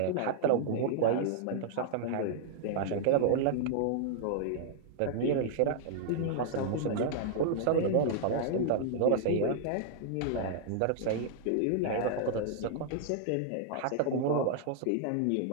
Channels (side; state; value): both; different; correlation -0.01